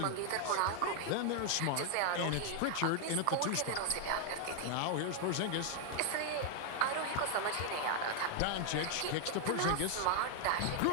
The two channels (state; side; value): different; both; correlation 0.00